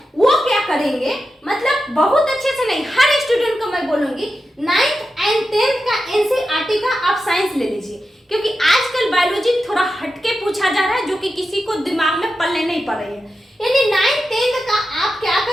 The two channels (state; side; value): normal; both; correlation 0.90